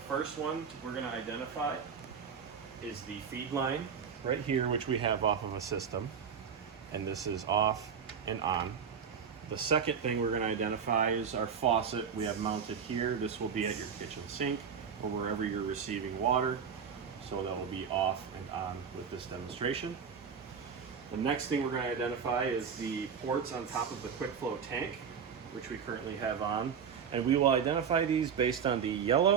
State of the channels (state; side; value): quieter; left; 6.9 dB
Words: one we're going to identify is the feed line right here, which we have off of a system, and this is off and on. The second thing we're going to identify is our faucet we have mounted here. This will be at your kitchen sink or wherever you're receiving water, so that will be off and on with this demonstration. The next thing we're going to identify is the ports on top of the quick flow tank, which we currently have on, and we will identify these based on the